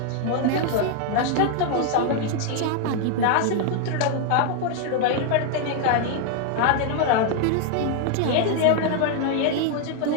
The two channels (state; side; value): different; both; correlation 0.00